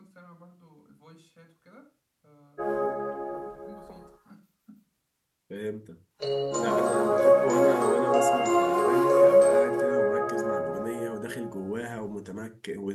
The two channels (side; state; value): both; identical; correlation 1.00